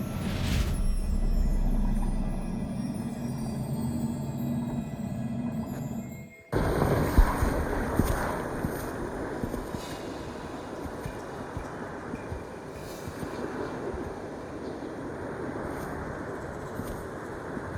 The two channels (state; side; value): identical; both; correlation 1.00